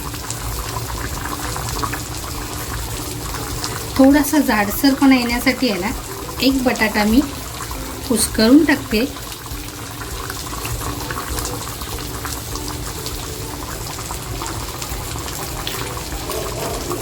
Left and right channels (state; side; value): identical; both; correlation 1.00